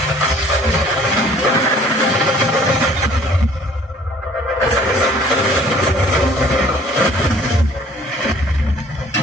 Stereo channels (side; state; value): both; normal; correlation 0.55